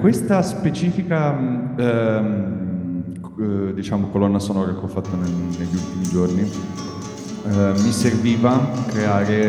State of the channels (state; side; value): identical; both; correlation 1.00